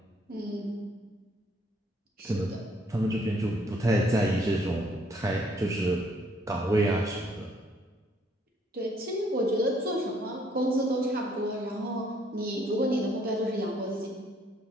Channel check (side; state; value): both; normal; correlation 0.66